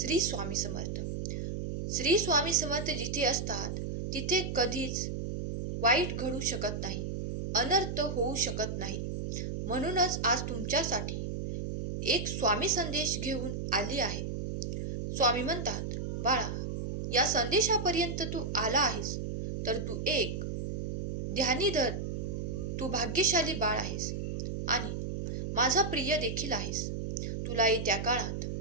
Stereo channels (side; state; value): right; noise; hum, 3 dB below the sound